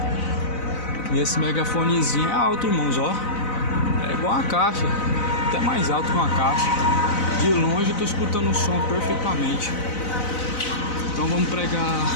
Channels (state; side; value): late; right; 4.0 ms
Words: E esse megafonezinho é alto, irmãos, ó. É igual a caixa, até mais alto que uma caixa. De longe eu tô escutando o som perfeitamente. Então vamos pregar